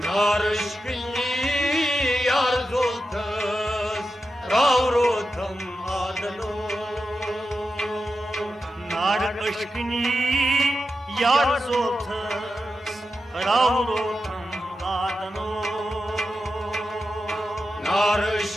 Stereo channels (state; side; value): normal; both; correlation 0.90